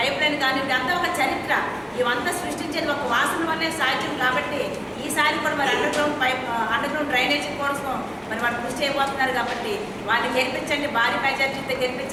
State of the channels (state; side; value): identical; both; correlation 1.00